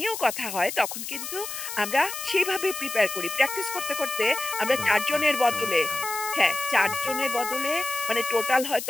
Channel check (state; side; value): noise; left; hiss, 7 dB below the sound